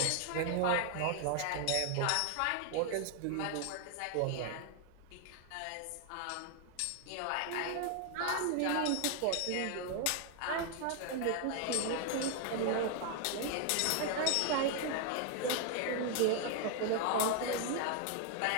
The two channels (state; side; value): different; both; correlation 0.00